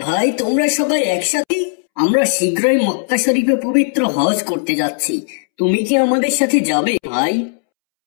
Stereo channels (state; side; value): silent; right; 69 dB below the other